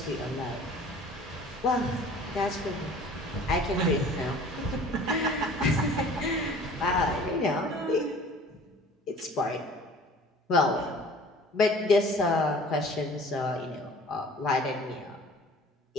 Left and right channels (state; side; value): normal; both; correlation 0.47